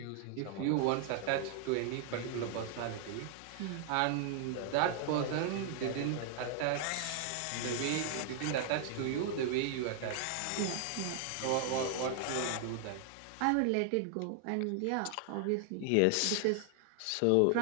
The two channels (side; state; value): both; different; correlation 0.00